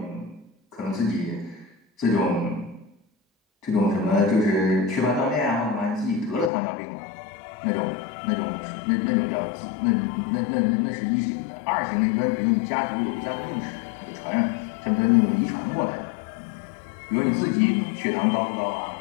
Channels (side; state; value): right; drops out; at 6.5 s